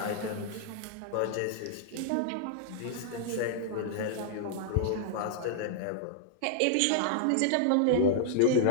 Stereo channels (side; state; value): both; different; correlation -0.01